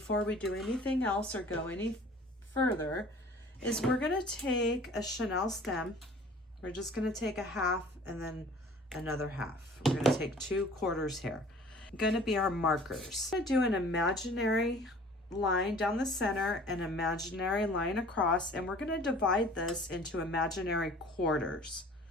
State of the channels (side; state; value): both; normal; correlation 0.48